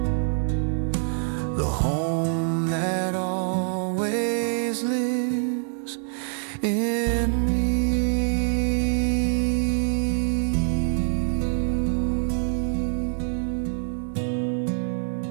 the home that always lives in me.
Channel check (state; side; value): silent; left; 56 dB below the other